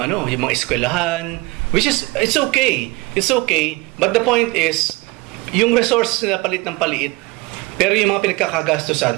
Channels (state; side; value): quieter; left; 23.0 dB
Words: mga eskwelahan, which is it's okay. It's okay, but the point is yung resource na palit ng paliit, pero yung mga